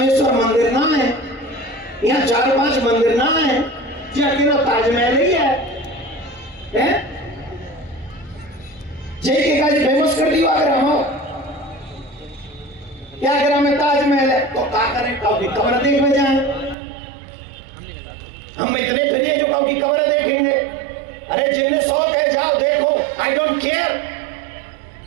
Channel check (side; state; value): left; drops out; at 16.8 s